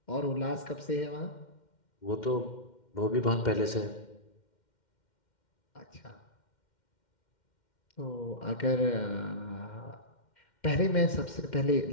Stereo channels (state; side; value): late; right; 2.1 ms